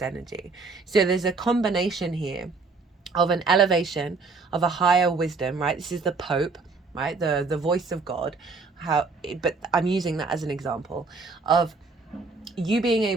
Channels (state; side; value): quieter; left; 4.2 dB